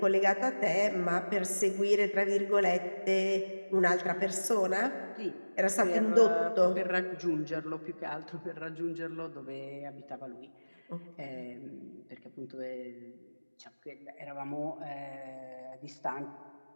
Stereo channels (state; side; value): inverted; both; correlation -1.00